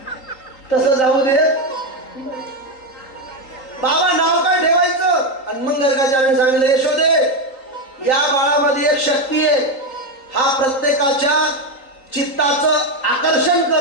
तसं जाऊ दे, बाबा नाव काय ठेवायचं. आणि मग गर्गाचार्याने सांगितलं यशोदे या बाळामध्ये एक शक्ती आहे, हा प्रत्येकाच्या चित्ताचं आकर्षण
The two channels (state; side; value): late; right; 3.8 ms